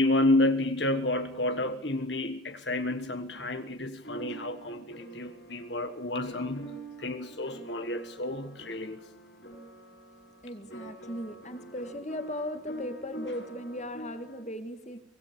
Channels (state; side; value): normal; both; correlation 0.32